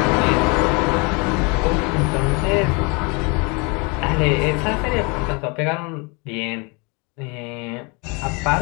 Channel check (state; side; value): quieter; right; 30.5 dB